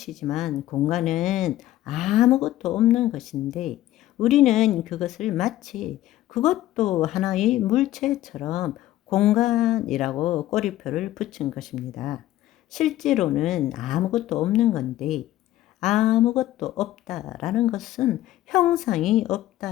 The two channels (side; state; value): right; quieter; 14.4 dB